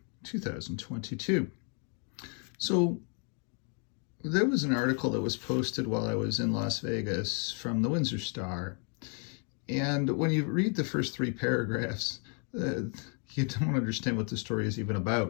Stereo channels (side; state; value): right; quieter; 40.0 dB